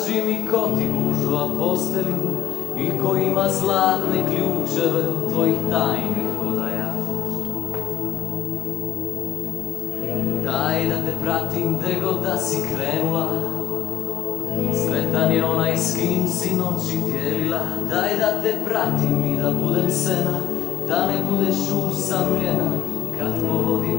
mi ko ti gužva postelju i ko ima zlatne ključeve od tvojih tajnih odaja. Daj da te pratim gde god da si krenula, sretan je onaj s kim si noći dijelila. Daj da te pratim i da budem sena, da ne budeš usamljena kad po vodi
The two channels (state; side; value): quieter; right; 11.8 dB